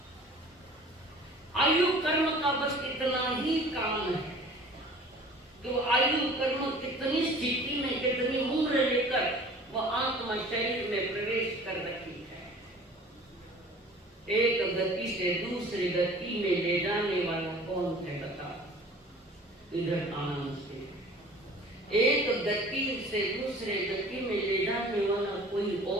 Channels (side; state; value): both; normal; correlation 0.46